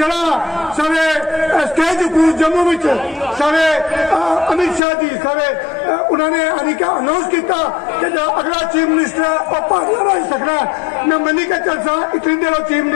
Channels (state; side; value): drops out; right; at 4.8 s